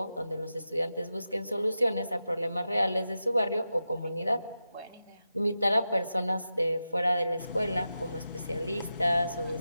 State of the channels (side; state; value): both; inverted; correlation -0.91